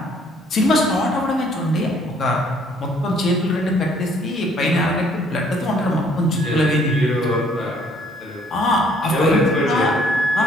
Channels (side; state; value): both; normal; correlation 0.62